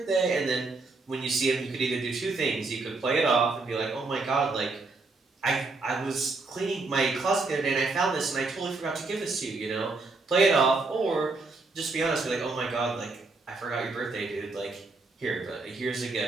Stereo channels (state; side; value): quieter; left; 3.7 dB